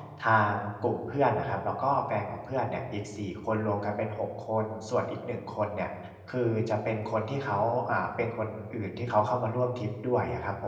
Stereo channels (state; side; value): identical; both; correlation 1.00